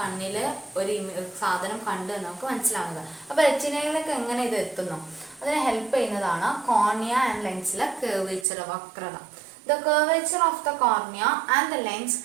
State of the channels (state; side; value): drops out; left; at 8.5 s